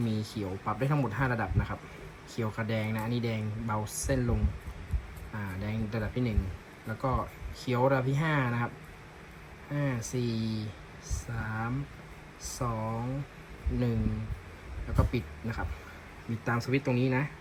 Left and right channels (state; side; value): identical; both; correlation 1.00